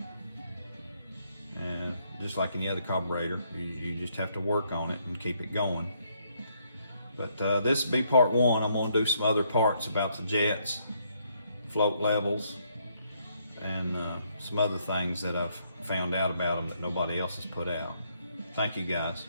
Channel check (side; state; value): both; inverted; correlation -0.72